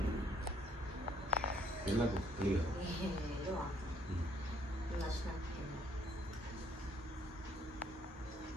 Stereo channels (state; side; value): normal; both; correlation 0.65